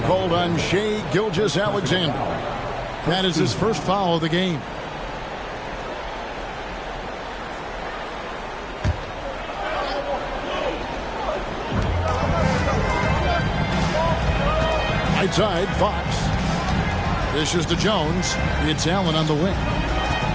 called on Shai Gilgeous-Alexander. That is his first foul of the game. Right side, Fox. Dishes to Jones. It's Allen on the wing.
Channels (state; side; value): identical; both; correlation 1.00